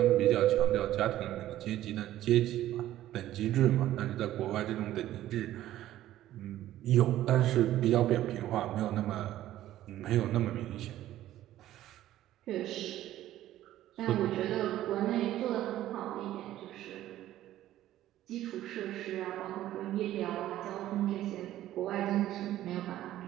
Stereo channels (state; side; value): quieter; left; 13.6 dB